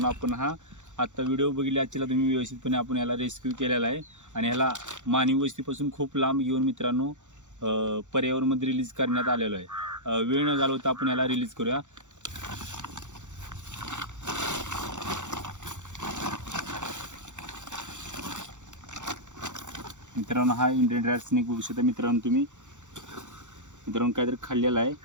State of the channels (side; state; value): left; late; 0.85 ms